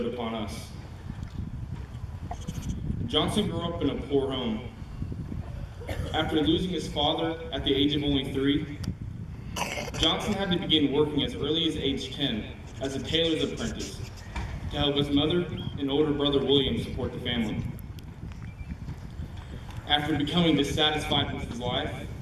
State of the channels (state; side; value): identical; both; correlation 1.00